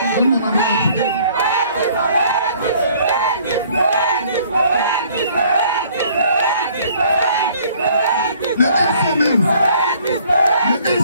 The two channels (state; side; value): inverted; both; correlation -0.58